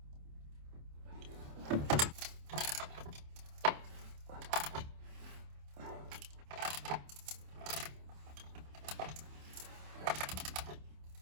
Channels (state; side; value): late; left; 27 ms